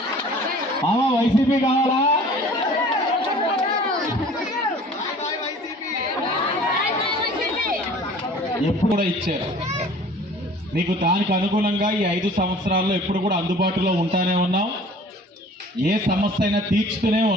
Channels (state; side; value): normal; both; correlation 0.48